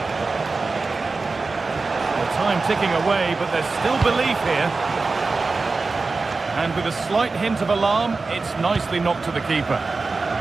The time ticking away, but there's still belief here. And with a slight hint of alarm, it's nicely knocked to the keeper.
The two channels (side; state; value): left; quieter; 3.9 dB